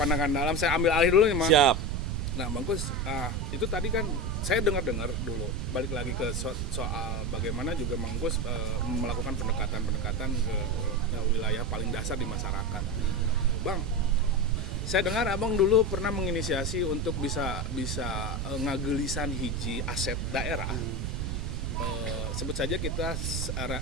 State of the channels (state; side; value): noise; right; rumble, 1 dB below the sound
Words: dalam saya ambil alih dulu nih, Mang. Siap. Nah, Bang Kus, itu tadi kan saya dengar dulu. Balik lagi ke soal bagaimana juga Bang Kus melakukan pendekatan ke wilayah paling dasar di masyarakat. Bang, saya dengar abang dulu pernah menginisiasi untuk bisa ngagelisan hiji aset daerah. Sebut saja kita